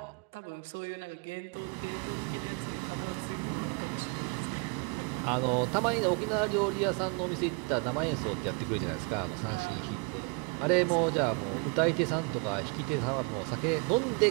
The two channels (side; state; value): left; quieter; 33.9 dB